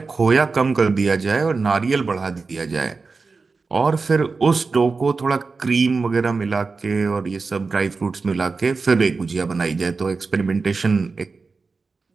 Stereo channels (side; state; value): left; quieter; 4.3 dB